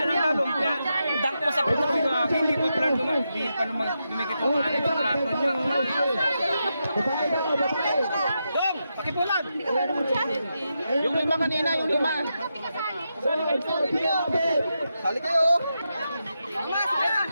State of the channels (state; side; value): inverted; both; correlation -0.86